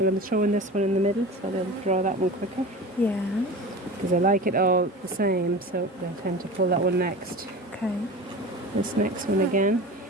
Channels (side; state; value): both; normal; correlation 0.33